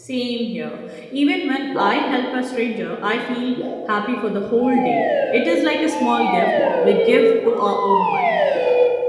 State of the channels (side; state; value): both; identical; correlation 1.00